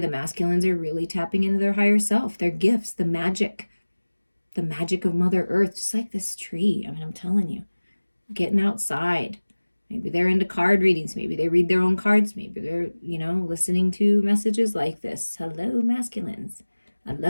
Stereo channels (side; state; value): both; inverted; correlation -1.00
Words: masculines are really tapping into their higher self, their gifts, the magic of Mother Earth, just like this tree. I mean, I'm telling you, getting outside. Maybe they're into card readings. Maybe they read their own cards. Maybe they're, listening to messages like this. Hello, masculines. I